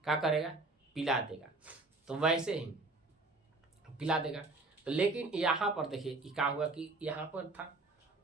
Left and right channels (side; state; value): left; quieter; 3.3 dB